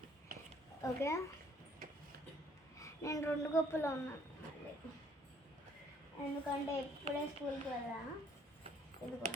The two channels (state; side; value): normal; both; correlation 0.62